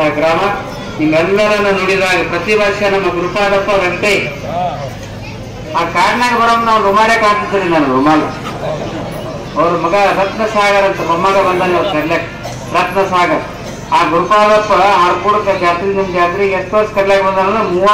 ಗ್ರಾಮ ನಿಮ್ಮೆಲ್ಲರನ್ನ ನುಡಿದಾಗ ಪ್ರತಿ ವರ್ಷ ನಮ್ಮ ಗುರುಪಾದಪ್ಪ ರಸ್ತೆ ಆ ಕಾಡ್ನಾಗ ಬರೋದು ನಾವು ರುಮಾಲೆ ಕಾಣ್ತಿದ್ದೀರಿ. ನಾನು ರುಮಾಲ ಅವ್ರ ಮಗ ರತ್ನಸಾಗರ್ ಅಂತ ಮೊಮ್ಮಗ ಬಂದಾನೆ ಅವ್ರು ಕರ್ಲಾಕ್, ರತ್ನಸಾಗರ್. ಆ ಗುರುಪಾದಪ್ಪ ಹಾರ್ಕೂಡಕ್ಕೆ ಜಾತ್ರೆ, ನಿಮ್ಮ ಜಾತ್ರೆಗೆ ಎಷ್ಟು ವರ್ಷ ಕರ್ಲಾಕ್ ಬಂದಾನ?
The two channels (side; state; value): both; identical; correlation 1.00